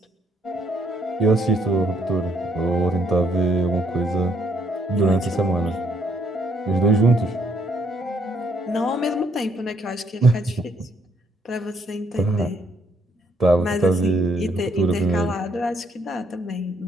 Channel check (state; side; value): normal; both; correlation 0.69